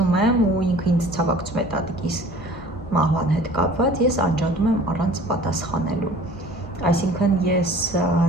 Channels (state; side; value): normal; both; correlation 0.47